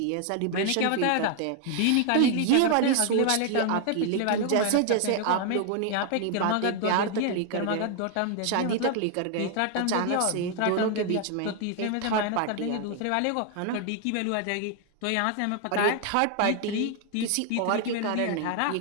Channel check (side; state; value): both; different; correlation 0.00